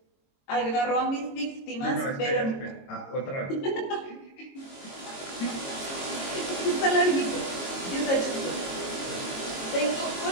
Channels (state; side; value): late; right; 22 ms